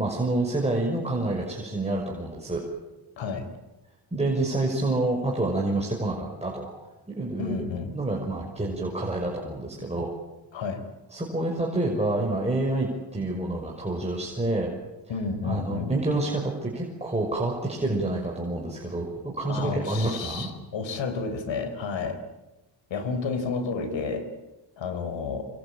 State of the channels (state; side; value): normal; both; correlation 0.49